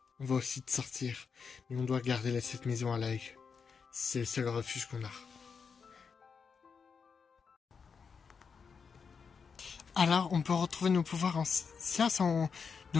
On va aussi te sortir, mais on doit garder cette maison à l'œil. C'est le seul refuge qu'on a. Alors, on peut retrouver nos pouvoirs anciens sans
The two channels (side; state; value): right; quieter; 5.8 dB